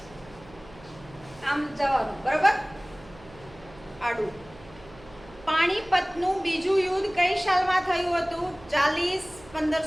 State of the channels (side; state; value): right; noise; hum, 22 dB below the sound